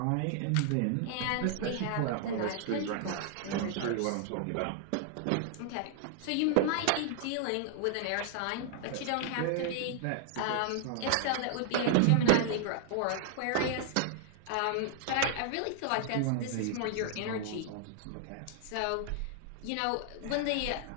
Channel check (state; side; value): different; both; correlation -0.01